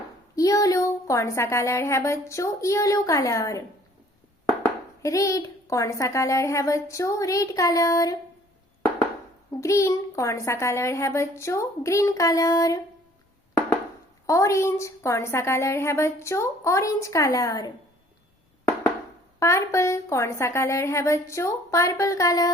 येलो कौन सा कलर है बच्चों? Yellow colour. रेड कौन सा कलर है बच्चों? Red colour. ग्रीन कौन सा कलर है बच्चों? Green colour. ऑरेंज कौन सा कलर है बच्चों? Orange colour. पर्पल कौन सा कलर है बच्चों? Purple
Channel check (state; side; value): normal; both; correlation 0.56